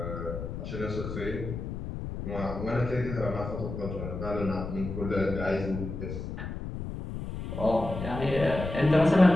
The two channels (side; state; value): left; noise; rumble, 6 dB below the sound